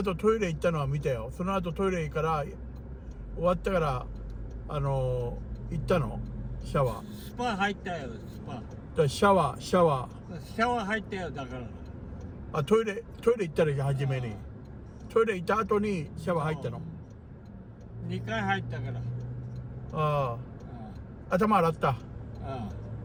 トイレ行ったのは見たよ。その後トイレから終わったから行ったのシャワー。スパ入ったよスパ。だシャワー入ったよだから。あトイレ行ったら初めにトイレ行った後にシャワー入ったの。2回入ったから。ああ頭洗った。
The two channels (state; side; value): identical; both; correlation 1.00